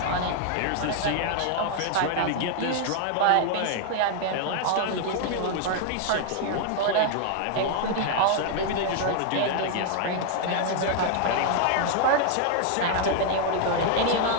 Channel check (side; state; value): both; different; correlation 0.00